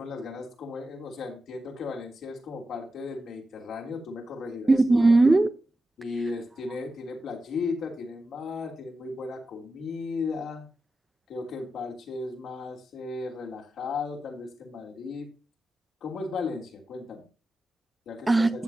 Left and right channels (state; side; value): normal; both; correlation 0.91